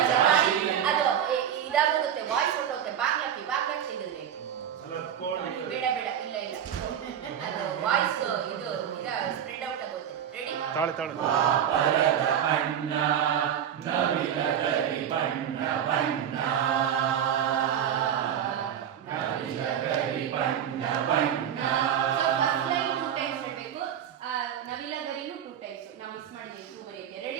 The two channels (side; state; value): left; quieter; 9.3 dB